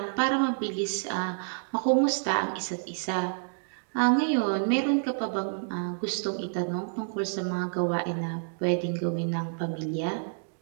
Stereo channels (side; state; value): left; silent; digital silence